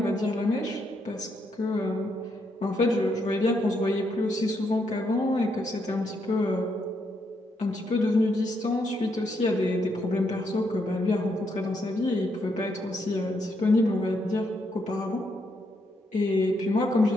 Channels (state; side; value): normal; both; correlation 0.77